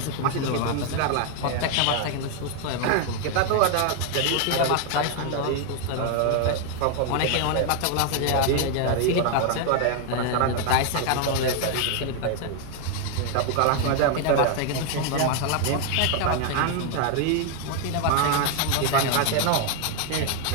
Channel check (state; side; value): different; both; correlation 0.01